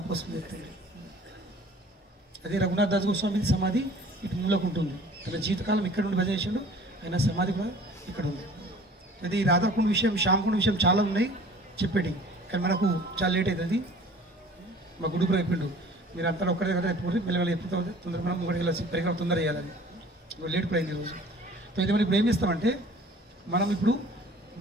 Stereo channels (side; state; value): both; normal; correlation 0.48